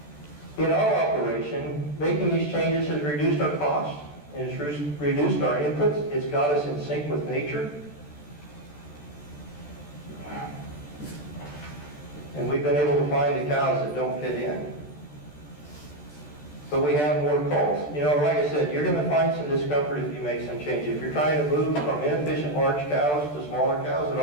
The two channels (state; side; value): late; right; 14 ms